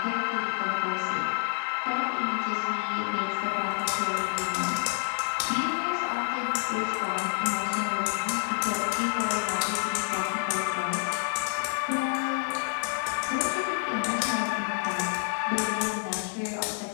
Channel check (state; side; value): silent; right; digital silence